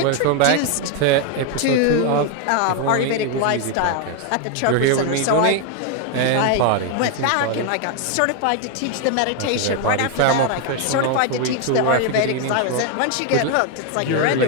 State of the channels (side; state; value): both; different; correlation 0.01